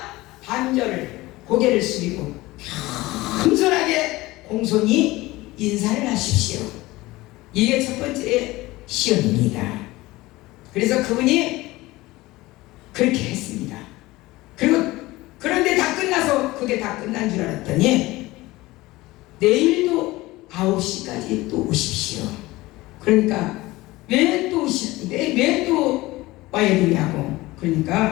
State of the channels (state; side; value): quieter; right; 19.5 dB